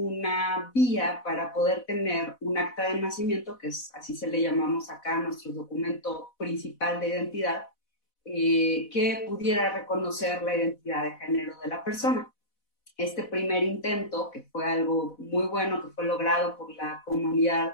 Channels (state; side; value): late; right; 4.1 ms